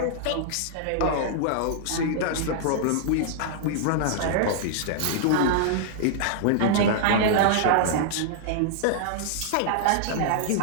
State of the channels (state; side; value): different; both; correlation -0.01